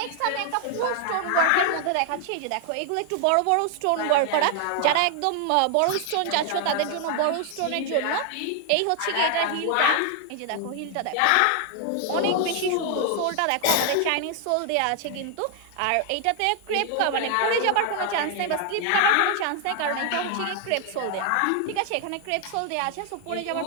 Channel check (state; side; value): different; both; correlation 0.00